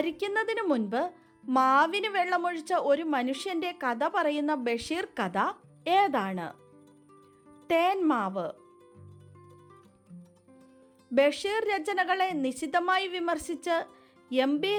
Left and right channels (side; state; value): both; identical; correlation 1.00